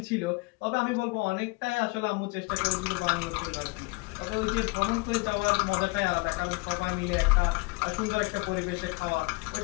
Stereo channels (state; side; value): quieter; right; 27.8 dB